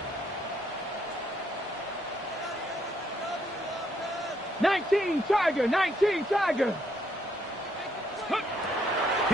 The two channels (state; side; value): normal; both; correlation 0.72